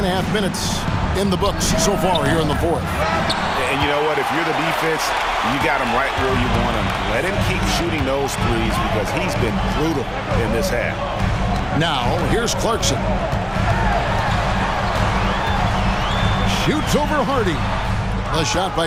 minutes in the books so far here in the 4th. And you know what? If you're the defense, you got him right where you want him. Let him keep shooting those threes because he's been brutal in this half. Now, here's Clarkson. Shoots over Hardy. The shot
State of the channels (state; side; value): identical; both; correlation 1.00